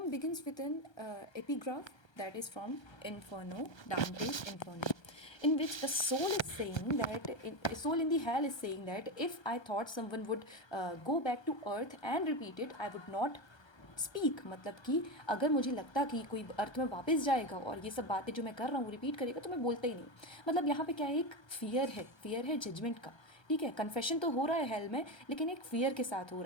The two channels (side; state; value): right; late; 1.3 ms